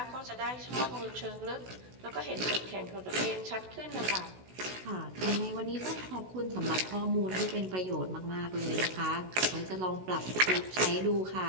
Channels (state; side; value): late; left; 16 ms